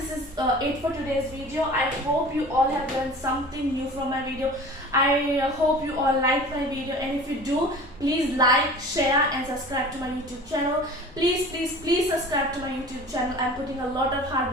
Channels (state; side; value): normal; both; correlation 0.41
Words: is it for today's video. I hope you all have learned something new from my video. I hope you all like my video, and if you do, please like, share and subscribe to my YouTube channel. Please subscribe to my YouTube channel. I'm putting a lot of